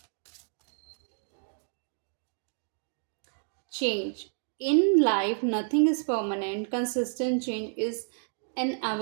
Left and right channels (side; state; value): left; silent; digital silence